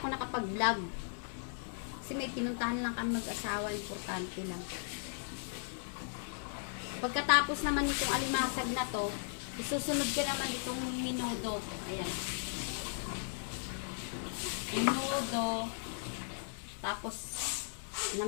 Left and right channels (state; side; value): silent; right; 53 dB below the other